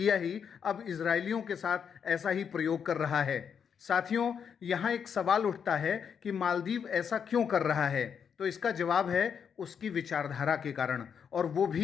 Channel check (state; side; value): quieter; right; 7.2 dB